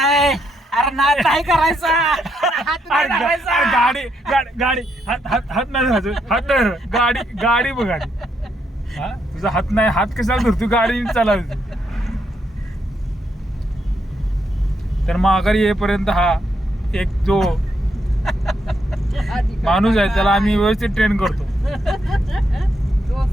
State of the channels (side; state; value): both; normal; correlation 0.78